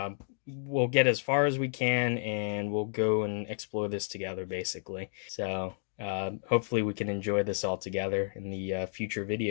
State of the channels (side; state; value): right; silent; digital silence